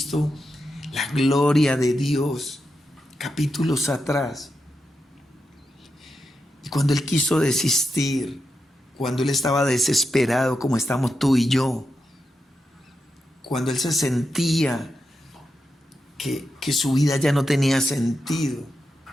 la gloria de Dios capítulos atrás. Y cuando él quiso desistir, cuando él estaba desesperado como estamos tú y yo, cuando él se sentía que su vida ya no tenía sentido,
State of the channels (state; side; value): normal; both; correlation 0.87